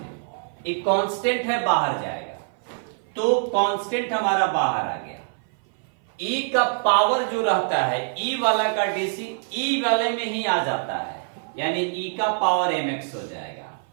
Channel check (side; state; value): left; silent; 57 dB below the other